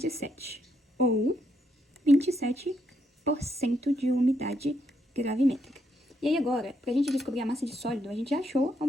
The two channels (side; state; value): both; normal; correlation 0.77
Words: ou 27% de umidade gravimétrica. E aí agora, para a gente descobrir a massa de sólido, a gente já achou a